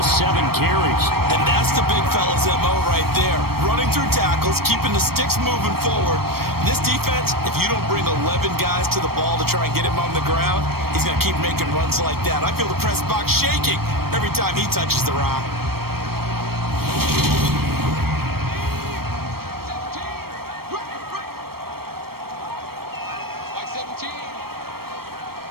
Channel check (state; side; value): late; left; 0.94 ms